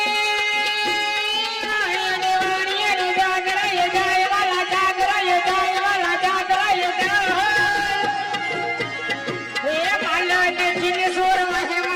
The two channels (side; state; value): both; identical; correlation 1.00